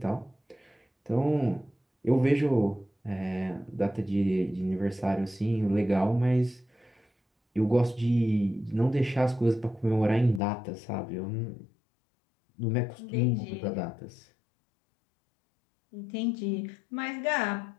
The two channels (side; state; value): right; drops out; at 10.4 s